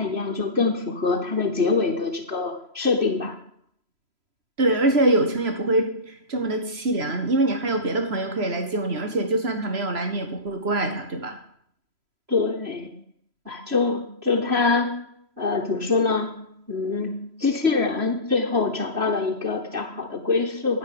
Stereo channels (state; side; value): late; left; 3.0 ms